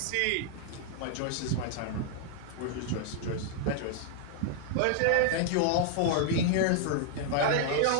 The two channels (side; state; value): both; different; correlation 0.00